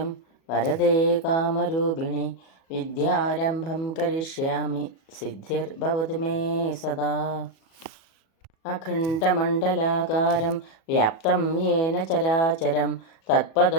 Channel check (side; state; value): right; late; 37 ms